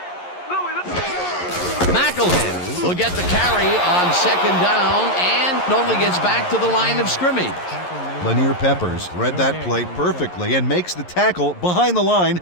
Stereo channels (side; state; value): right; late; 11 ms